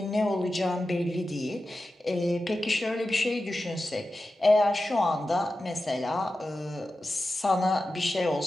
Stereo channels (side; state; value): both; normal; correlation 0.93